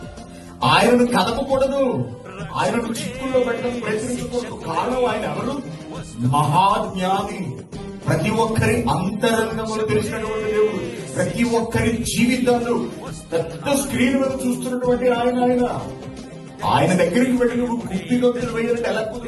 ఆయనను కదపకూడదు, ఆయనను చిక్కుల్లో పెట్టడం ప్రయత్నించకూడదు. కారణం ఆయన ఎవరు? మహాజ్ఞాని, ప్రతి ఒక్కరి అంతరంగములు తెలిసినటువంటి దేవుడు, ప్రతి ఒక్కరి జీవితాలు పెద్ద స్క్రీన్ మీద చూస్తున్నటువంటి ఆయన దగ్గరికి వెళ్ళి నువ్వు గుడ్డిలో వేయాలంటే ఎలా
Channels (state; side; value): identical; both; correlation 1.00